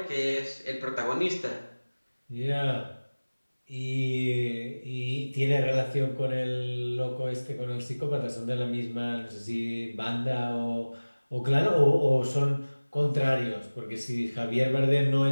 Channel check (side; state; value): both; inverted; correlation -1.00